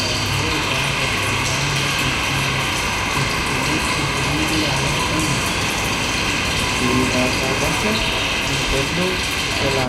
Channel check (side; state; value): both; identical; correlation 1.00